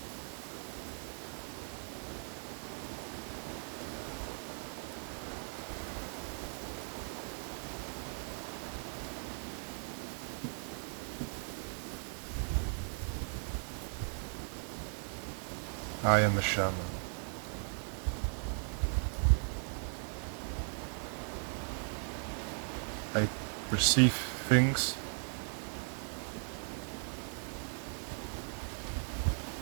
I am a shaman. I perceive things.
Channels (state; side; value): silent; left; 52 dB below the other